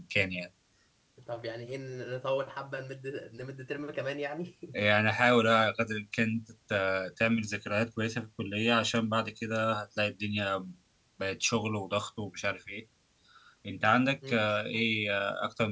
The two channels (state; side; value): identical; both; correlation 1.00